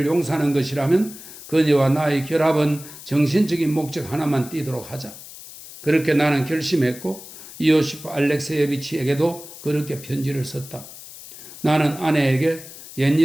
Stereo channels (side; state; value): left; noise; hiss, 16 dB below the sound